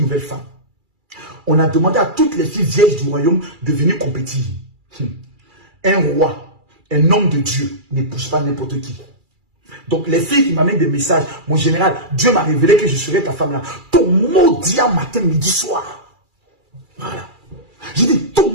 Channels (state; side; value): late; left; 2.3 ms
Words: nouvelle femme. On a demandé à toutes les filles vieilles du royaume de venir compétir. Un roi, un homme de Dieu, n'épouse pas n'importe qui. Donc les filles qui m'amènent des messages, mon général, Dieu m'a révélé que je serai ta femme là. Ton mot dit à matin, midi, soir. Voilà. J'ai dit, ton